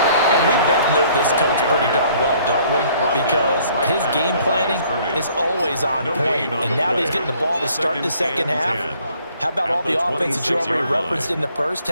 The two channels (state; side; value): inverted; both; correlation -0.60